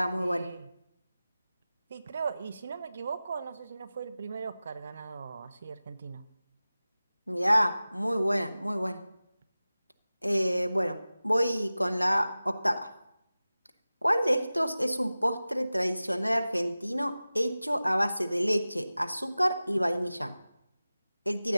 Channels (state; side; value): inverted; both; correlation -0.97